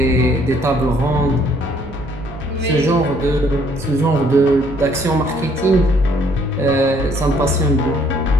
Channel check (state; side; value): noise; right; hum, 15 dB below the sound